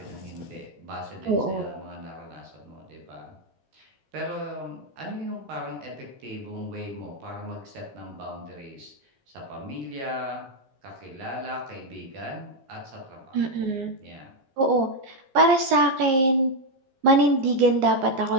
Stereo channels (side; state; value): left; late; 15 ms